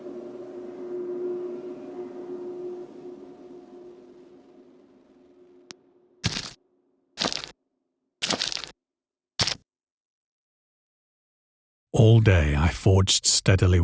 All day I forged steadily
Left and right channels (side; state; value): both; identical; correlation 1.00